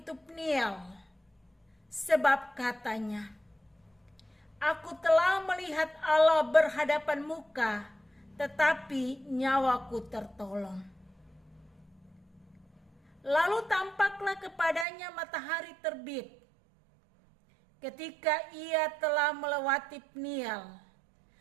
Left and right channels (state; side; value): drops out; left; at 14.9 s